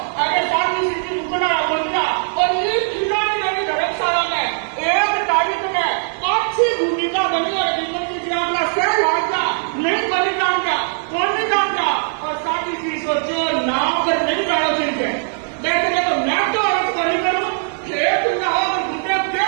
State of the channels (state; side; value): silent; left; 64 dB below the other